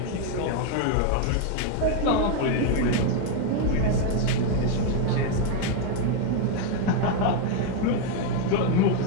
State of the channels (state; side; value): different; both; correlation 0.00